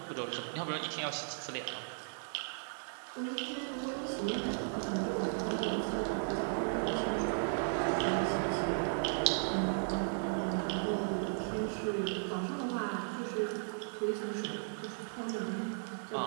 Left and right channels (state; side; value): silent; left; digital silence